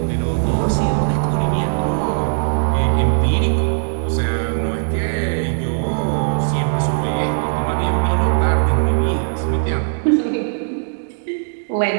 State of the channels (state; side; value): silent; left; digital silence